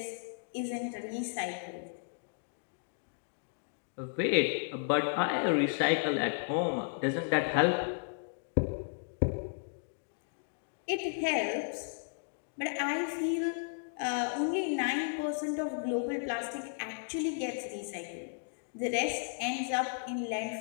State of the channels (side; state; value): right; silent; digital silence